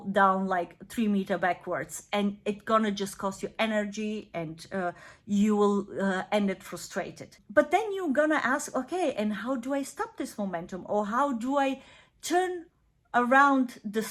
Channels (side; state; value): both; identical; correlation 1.00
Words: down like 3 meters backwards, and it's gonna just cost you energy, and you will end it frustrated. But then you're gonna ask, okay, and how do I stop this momentum, or how do I turn around the